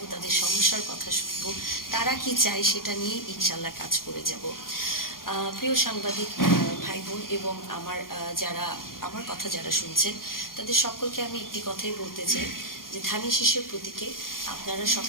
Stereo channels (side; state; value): right; late; 0.91 ms